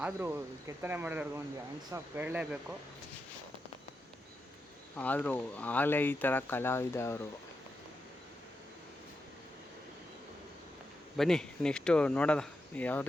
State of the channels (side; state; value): both; normal; correlation 0.87